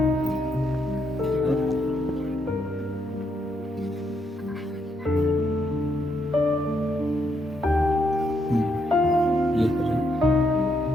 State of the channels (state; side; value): normal; both; correlation 0.77